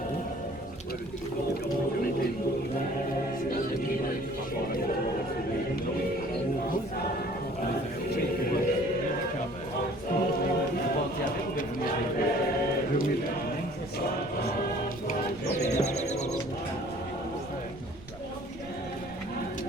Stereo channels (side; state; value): right; noise; rumble, 18 dB below the sound